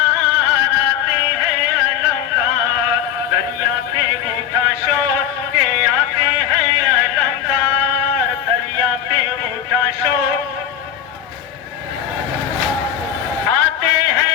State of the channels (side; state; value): right; quieter; 9.6 dB